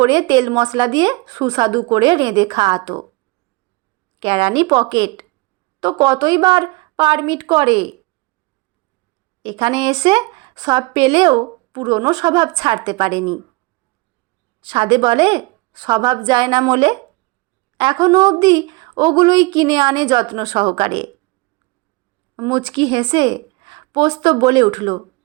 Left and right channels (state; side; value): quieter; left; 24.3 dB